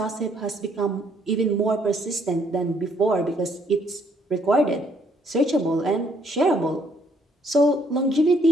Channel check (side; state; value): both; normal; correlation 0.68